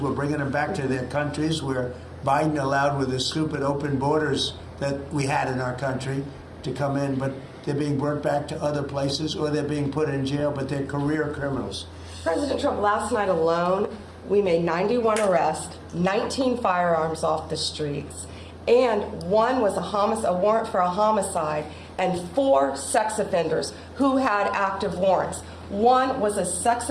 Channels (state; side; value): identical; both; correlation 1.00